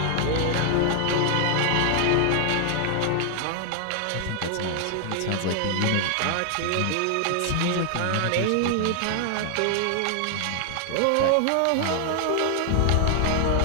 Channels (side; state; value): both; different; correlation 0.00